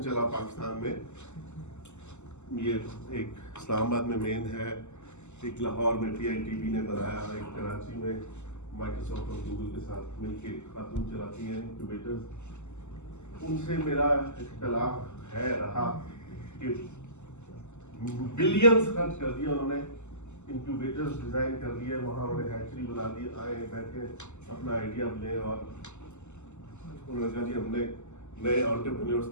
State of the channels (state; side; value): late; right; 0.83 ms